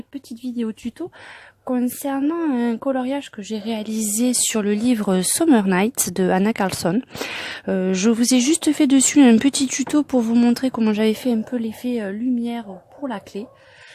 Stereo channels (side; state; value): both; identical; correlation 1.00